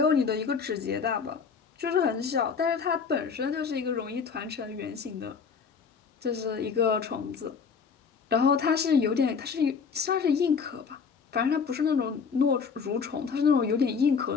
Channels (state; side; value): quieter; right; 5.9 dB